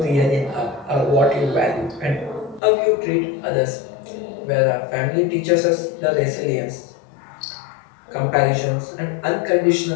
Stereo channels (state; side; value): drops out; right; at 2.6 s